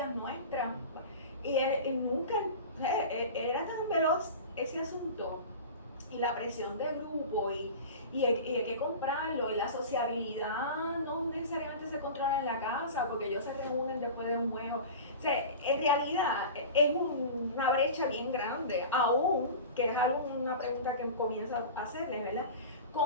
nuestras, y él nunca, era tan veloz ese asunto, y la presión del grupo, y hay que comprarlo, y la sociabilidad no necesariamente se controla en la casa, porque ellos se reúnen después de un juego. O sea, en realidad es una brecha bien grande, aún, que es una pregunta que comienzo a hacerles, ¿verdad?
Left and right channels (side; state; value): both; inverted; correlation -0.33